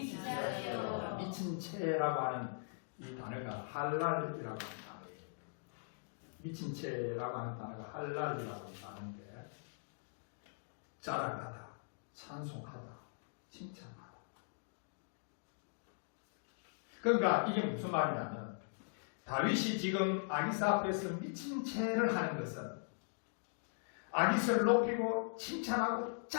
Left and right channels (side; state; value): right; silent; digital silence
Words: 미친 채라고 하는 이 단어가 할랄이라고 하는 단어예요. 미친 채라고 하는 단어가 할랄이라고 하는 단어인데 자랑하다, 찬송하다, 칭찬하다. 그러니까 이게 무슨 말이냐면 다윗이 지금 아기사 앞에서 미친 채를 하는 것은 아기사를 높이고 칭찬하고